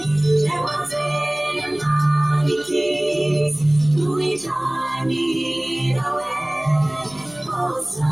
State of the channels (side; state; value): right; noise; hum, 27 dB below the sound